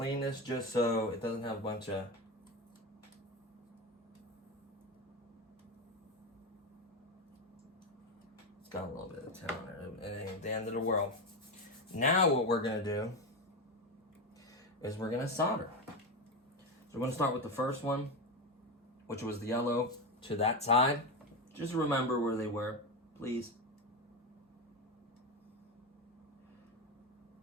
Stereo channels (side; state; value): both; normal; correlation 0.15